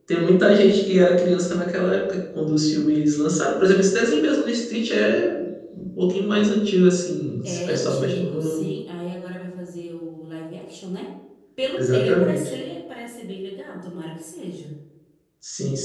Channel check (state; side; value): identical; both; correlation 1.00